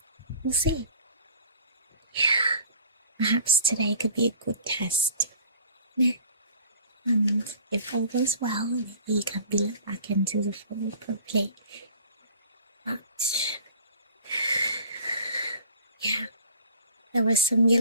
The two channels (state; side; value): inverted; both; correlation -0.47